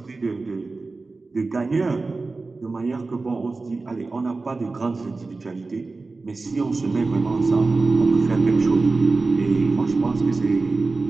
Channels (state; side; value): quieter; left; 3.7 dB